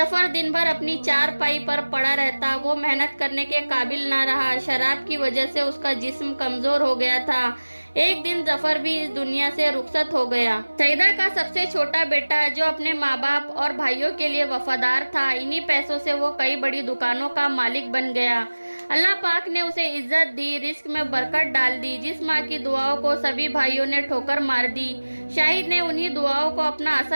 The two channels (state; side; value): inverted; both; correlation -1.00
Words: دن بھر اپنی چارپائی پر پڑا رہتا، وہ محنت کرنے کے قابل نہ رہا۔ شراب کی وجہ سے اس کا جسم کمزور ہو گیا تھا۔ ایک دن ظفر بھی اس دنیا سے رخصت ہو گیا۔ سعیدہ کا سب سے چھوٹا بیٹا جو اپنے ماں باپ اور بھائیوں کے لیے وفادار تھا، انہی پیسوں سے وہ کئی بڑی دکانوں کا مالک بن گیا۔ اللہ پاک نے اسے عزت دی، رزق میں برکت ڈال دی۔ جس ماں کی دعاؤں کو سبھی بھائیوں نے ٹھوکر مار دی، شاہد نے انہی دعاؤں کو اپنا